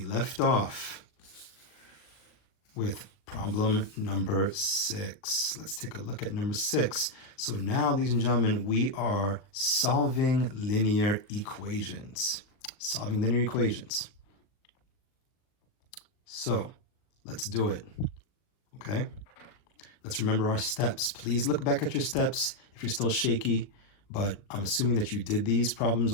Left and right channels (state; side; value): late; right; 39 ms